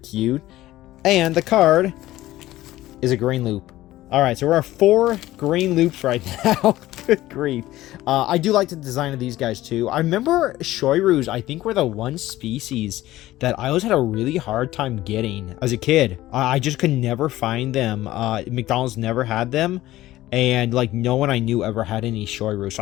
And the card is a green loop. All right, so we're at 4 green loops right now. Good grief. I do like the design of these guys, too. I remember Shoiryus, I think, were the one species that I always had a really hard time getting as a kid. I just could never find them. McDonald's never had them. And, like, no one I knew ever had any Shoiryu. So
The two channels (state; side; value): quieter; right; 15.8 dB